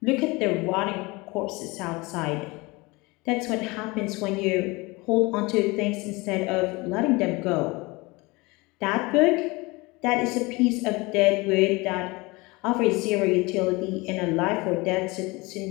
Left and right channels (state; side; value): quieter; right; 24.2 dB